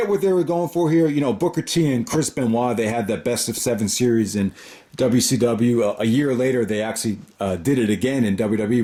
what they were going for here. You know, Booker T and Chris Benoit, they had that best of 7 series in WCW. A year later, they actually did it again in WWE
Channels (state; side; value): identical; both; correlation 1.00